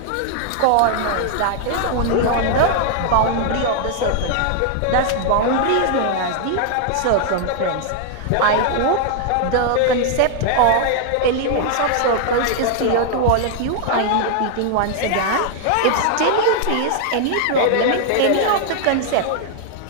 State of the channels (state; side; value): different; both; correlation 0.00